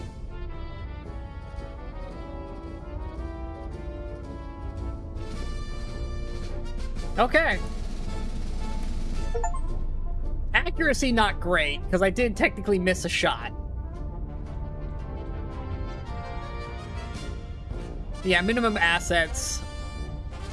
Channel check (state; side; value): identical; both; correlation 1.00